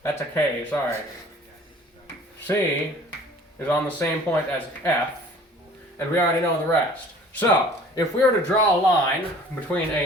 that's a K, sorry, C is on the same point as F, and we already know the rest. So, if we were to draw a line between A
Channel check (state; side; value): normal; both; correlation 0.49